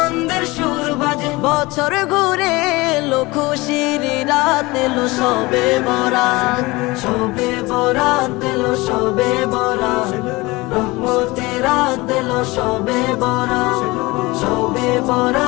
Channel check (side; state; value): right; quieter; 22.3 dB